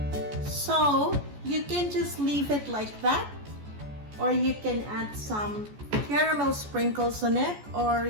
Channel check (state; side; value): late; left; 14 ms